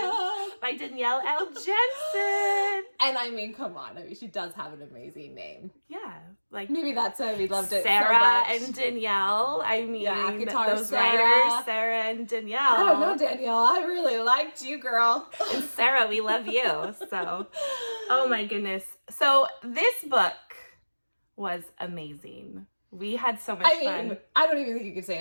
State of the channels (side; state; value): both; inverted; correlation -1.00